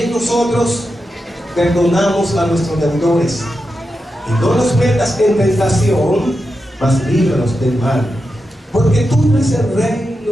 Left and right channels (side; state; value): both; normal; correlation 0.88